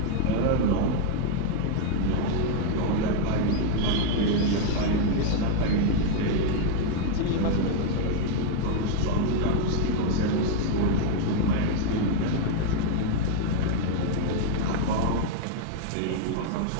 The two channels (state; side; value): different; both; correlation 0.00